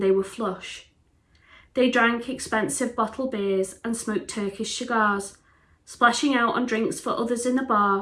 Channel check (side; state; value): both; identical; correlation 1.00